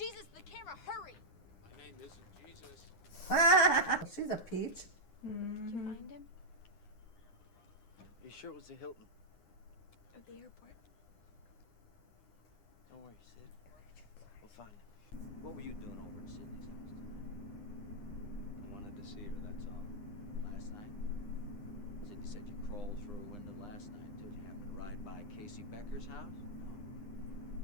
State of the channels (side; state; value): right; late; 9.8 ms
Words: the camera, hurry! My name isn't Jesus. She's a peach. Did you find him? Are you sure it was the Hilton? At the airport. Don't worry, Sid. We'll find him. What were you doing over at Sydney's house tonight? I wanted to see her, that's all. Last night? Sydney said you crawled through a window last night. Did you happen to ride by Casey Becker's house?